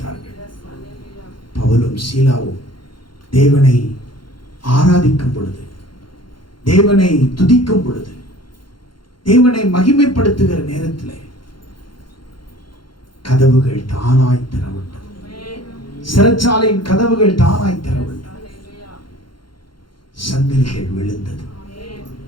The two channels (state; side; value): late; right; 0.72 ms